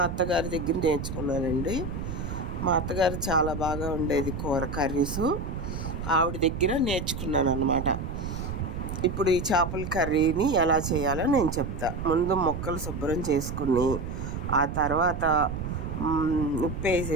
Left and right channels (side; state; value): right; noise; rumble, 5 dB below the sound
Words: అత్తగారి దగ్గర నేర్చుకున్నానండి. మా అత్తగారు చాలా బాగా ఉండేది కూర కర్రీసు. ఆవిడ దగ్గర నేర్చుకున్నాను అన్నమాట. ఇప్పుడు ఈ చేపల కర్రీని ఎలా చేయాలో నేను చెప్తా. ముందు ముక్కలు శుభ్రం చేసుకుని ఆ తర్వాత ఉప్పు